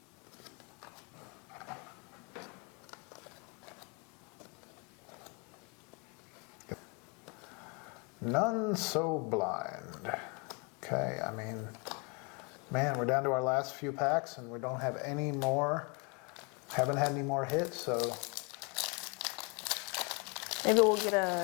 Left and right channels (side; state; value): right; quieter; 32.7 dB